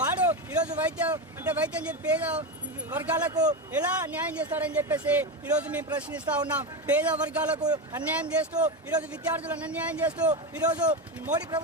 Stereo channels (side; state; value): both; normal; correlation 0.16